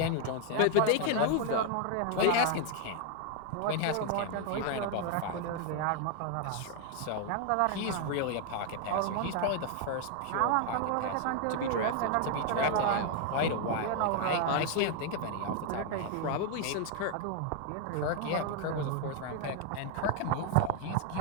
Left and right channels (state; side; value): different; both; correlation 0.00